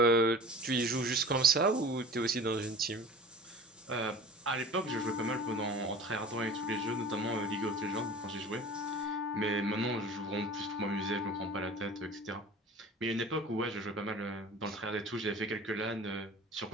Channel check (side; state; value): both; normal; correlation 0.41